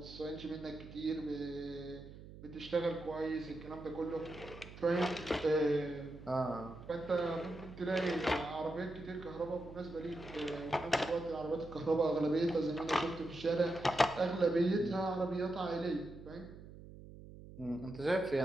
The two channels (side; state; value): right; noise; hum, 15 dB below the sound